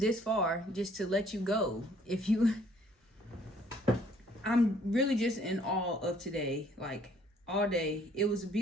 far just to let you go. I'm really just in awe of today. Like all day. It was a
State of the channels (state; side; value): normal; both; correlation 0.61